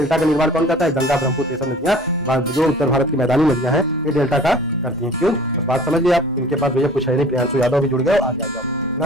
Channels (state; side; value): normal; both; correlation 0.46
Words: का निर्माण कौन करता है? गंगा, ब्रह्मपुत्र, ये सब नदियां जो उत्तर भारत की मैदानी नदियां हैं, ये डेल्टा का करती हैं। क्यों? बस बात समझ लिये आप। इनके पास भैया कुछ है नहीं। प्रियांशु यादव भी जुड़ गए, आगे आ जाओ।